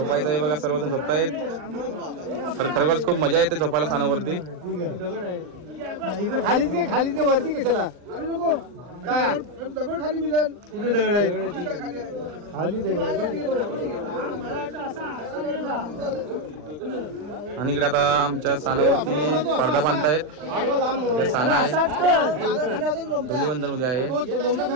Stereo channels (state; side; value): late; left; 39 ms